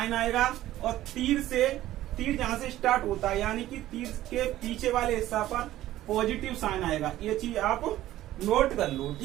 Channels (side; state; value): left; quieter; 14.4 dB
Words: आएगा, और तीर जहां से स्टार्ट होता है यानी कि तीर के पीछे वाले हिस्सा पर पॉजिटिव साइन आएगा। ये चीज आप नोट कर लो,